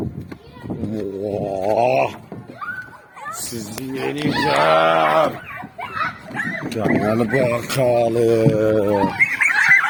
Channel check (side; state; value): both; identical; correlation 1.00